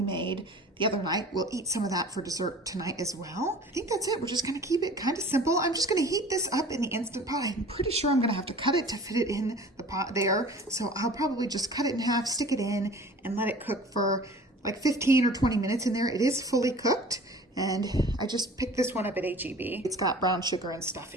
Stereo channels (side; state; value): both; normal; correlation 0.44